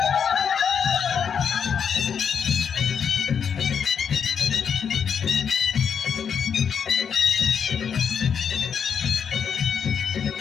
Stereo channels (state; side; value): quieter; right; 7.2 dB